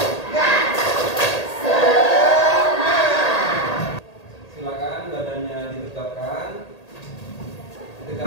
Silakan badannya ditegakkan.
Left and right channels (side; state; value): right; late; 1.8 ms